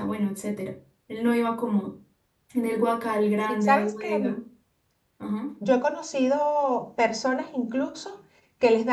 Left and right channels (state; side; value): identical; both; correlation 1.00